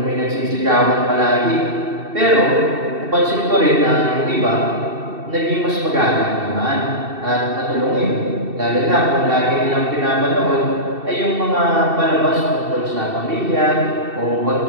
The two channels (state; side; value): late; left; 2.7 ms